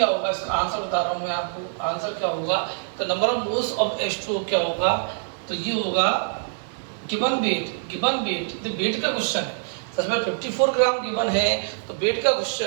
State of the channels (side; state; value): left; silent; digital silence